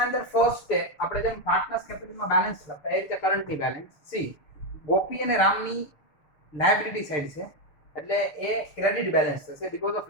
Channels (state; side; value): late; right; 6.8 ms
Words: અંદર ફર્સ્ટ સ્ટેપ આપણે જેમ પાર્ટનર્સ કેપિટલમાં બેલેન્સ લખતા એ રીતે કરંટની બેલેન્સ. સી ગોપી અને રામની લાયબિલિટી સાઈડ છે એટલે એ ક્રેડિટ બેલેન્સ થશે બીકોઝ ઓફ